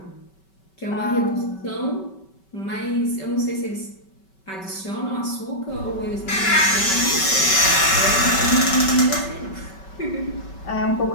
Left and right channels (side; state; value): right; late; 5.3 ms